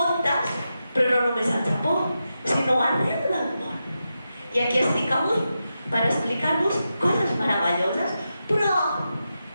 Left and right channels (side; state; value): both; inverted; correlation -0.89